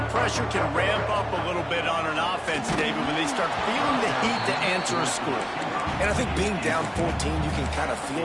pressure can ramp up a little bit on an offense, David, when they start feeling the heat to answer a score. And I think being down 14, you can kind of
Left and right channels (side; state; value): both; identical; correlation 1.00